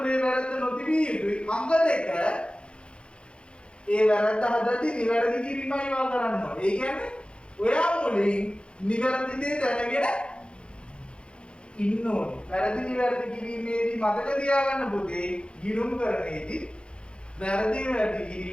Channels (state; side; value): late; right; 0.056 ms